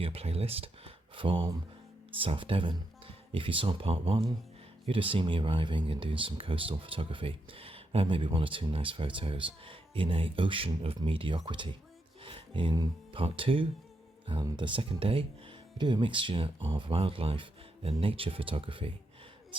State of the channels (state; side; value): normal; both; correlation 0.82